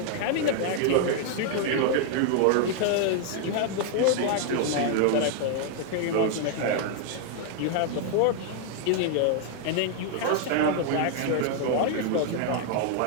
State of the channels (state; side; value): different; both; correlation 0.00